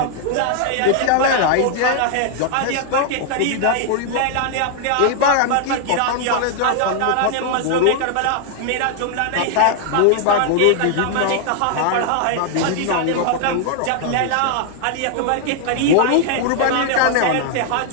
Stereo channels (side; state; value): both; different; correlation 0.00